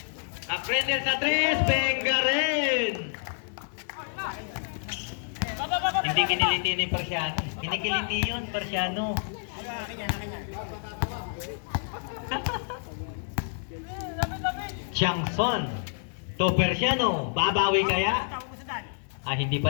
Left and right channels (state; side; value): silent; right; digital silence